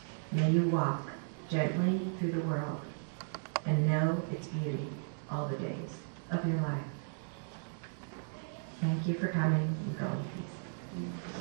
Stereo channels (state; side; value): silent; left; digital silence